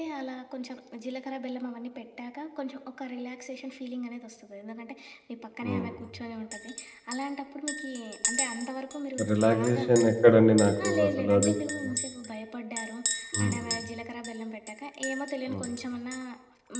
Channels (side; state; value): both; identical; correlation 1.00